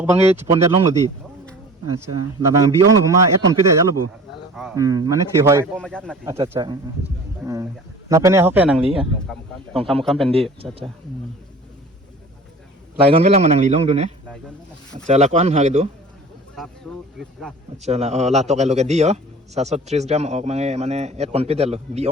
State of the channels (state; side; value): normal; both; correlation 0.42